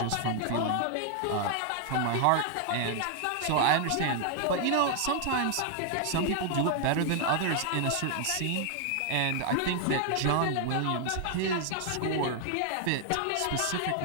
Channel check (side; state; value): both; different; correlation 0.00